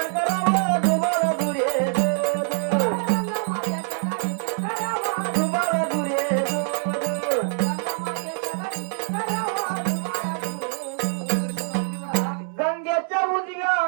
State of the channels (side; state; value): left; silent; 62 dB below the other